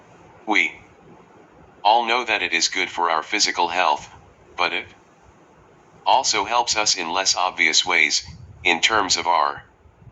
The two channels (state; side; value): identical; both; correlation 1.00